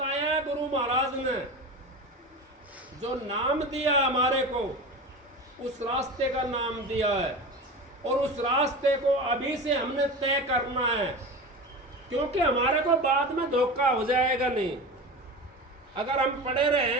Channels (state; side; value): normal; both; correlation 0.29